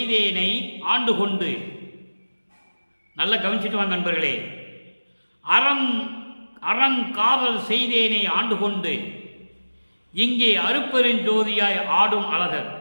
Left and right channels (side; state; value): both; inverted; correlation -1.00